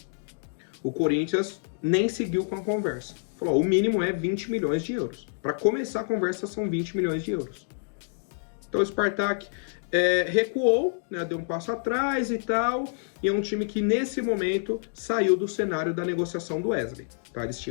O Corinthians nem seguiu com a conversa. Falou, o mínimo é 20 milhões de euros. Para começar a conversa são 20 milhões de euros. Então o Spartak recuou, né, deu um passo atrás e tal, e é um time que nesse momento saiu do cenário da negociação do Wesley. Tá? Eles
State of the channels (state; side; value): silent; right; digital silence